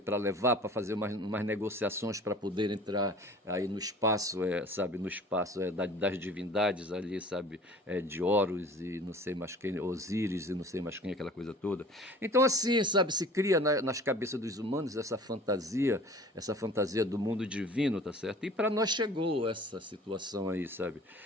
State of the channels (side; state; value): both; normal; correlation 0.45